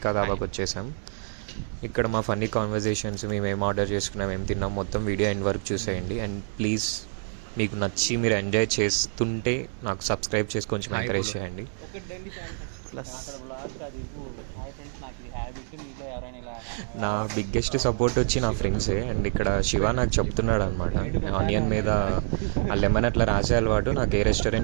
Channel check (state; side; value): silent; left; digital silence